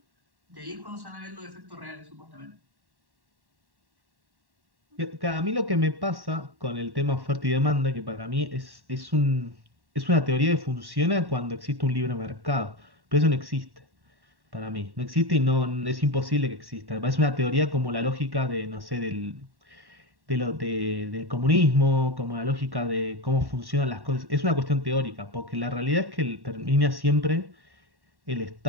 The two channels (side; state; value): left; late; 1.1 ms